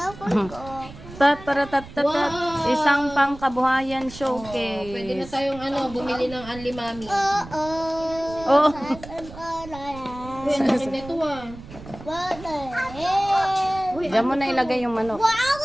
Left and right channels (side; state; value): right; noise; rumble, 16 dB below the sound